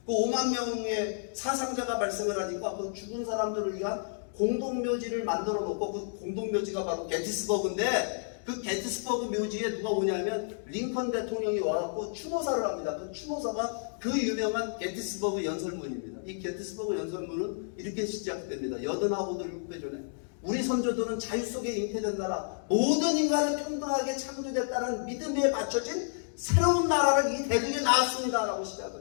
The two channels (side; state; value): right; silent; digital silence